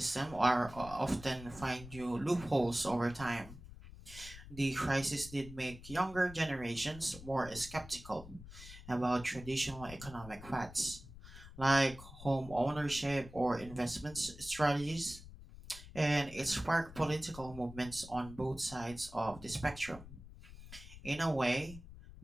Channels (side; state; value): left; noise; rumble, 15 dB below the sound